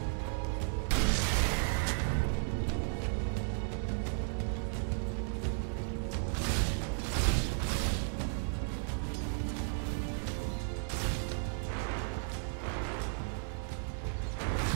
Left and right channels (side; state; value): left; silent; 55 dB below the other